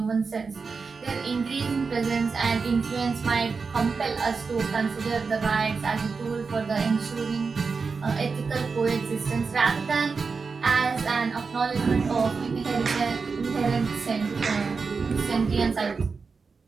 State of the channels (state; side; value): quieter; left; 4.8 dB